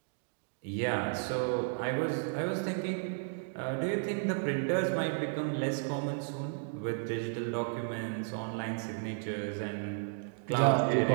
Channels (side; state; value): left; silent; digital silence